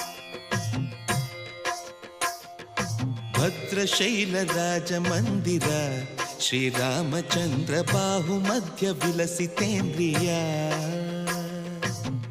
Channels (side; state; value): both; identical; correlation 1.00